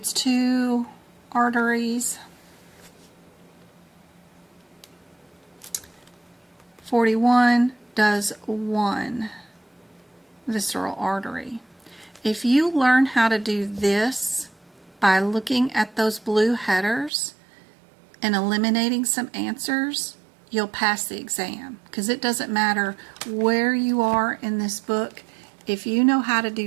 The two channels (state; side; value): drops out; left; at 17.1 s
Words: 2 arteries. 41 does 1. visceral artery. If you learn how to do this by looking at those blue headers and eliminating some answers, you'll pass the exam, because it doesn't matter where you are in this book. If you know how to